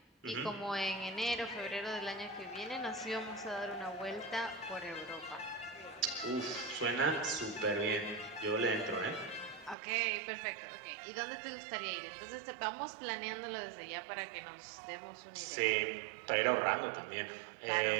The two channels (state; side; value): drops out; left; at 9.8 s